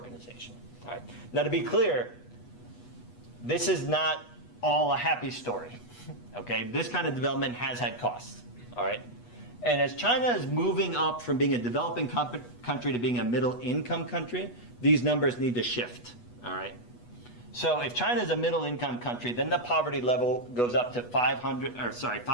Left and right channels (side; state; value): right; late; 8.2 ms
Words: All right. Now, to be clear, this is not all a happy story, okay? This kind of development has had costs, all right? And as China is moving up from being a developing country to being a middle-income country, these numbers need to shift, all right? So if China is a middle-income country, then the poverty level goes up to